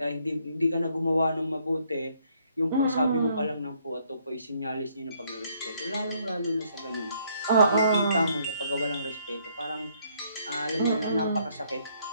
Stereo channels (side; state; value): both; inverted; correlation -0.68